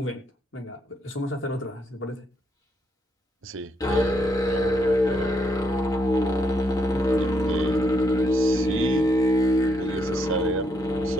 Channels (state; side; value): normal; both; correlation 0.75